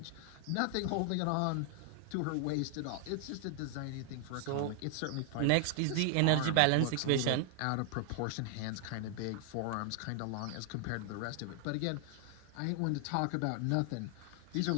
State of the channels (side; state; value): both; different; correlation 0.00